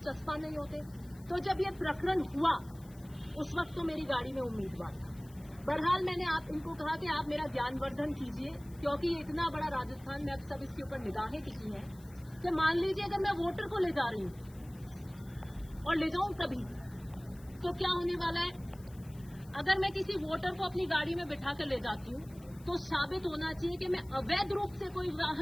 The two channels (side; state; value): left; noise; hiss, 25 dB below the sound